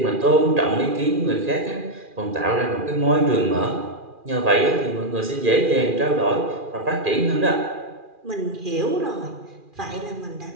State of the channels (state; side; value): late; left; 2.4 ms